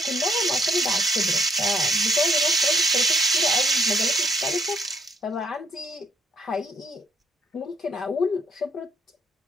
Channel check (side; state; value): both; normal; correlation 0.69